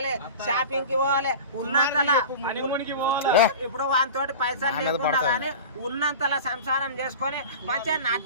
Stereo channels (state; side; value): inverted; both; correlation -0.33